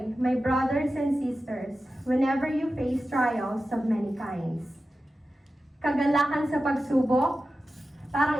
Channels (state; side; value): normal; both; correlation 0.93